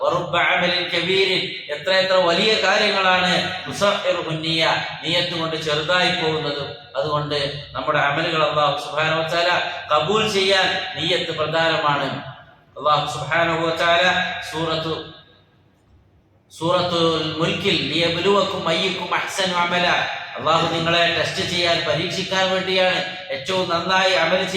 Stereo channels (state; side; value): identical; both; correlation 1.00